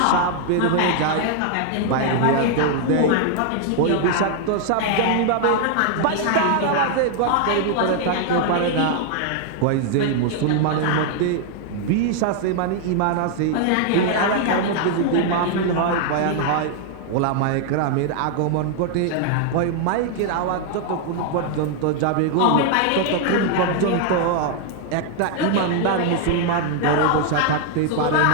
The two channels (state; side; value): different; both; correlation 0.00